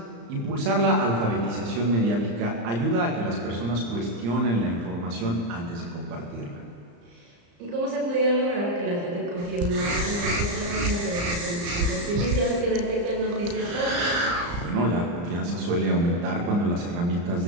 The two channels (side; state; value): left; late; 35 ms